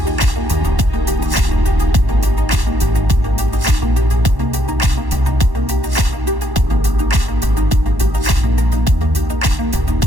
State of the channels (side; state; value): left; late; 1.1 ms